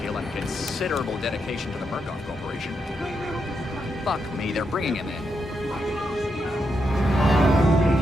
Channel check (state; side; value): normal; both; correlation 0.82